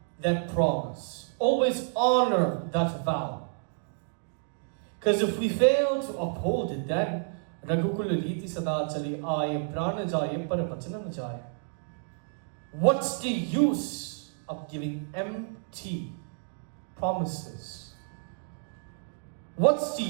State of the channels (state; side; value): silent; left; digital silence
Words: that promise, always honor that vow. Because if we fail to uphold it, then Raghukul Riti Sada Chali Aaye Prana Jaye Par Vachana Na Jaye. What's the use of giving empty promises? What's the